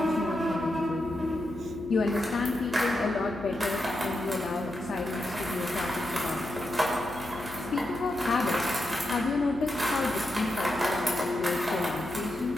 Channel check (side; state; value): left; noise; hum, 15 dB below the sound